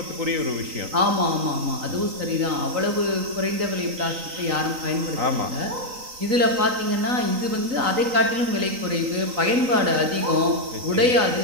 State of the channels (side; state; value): left; late; 3.9 ms